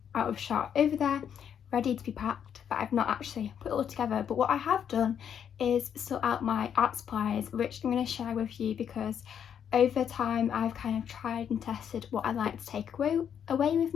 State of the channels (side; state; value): right; quieter; 8.4 dB